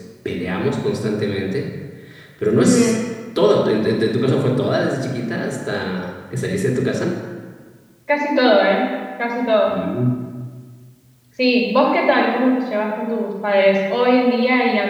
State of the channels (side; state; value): both; identical; correlation 1.00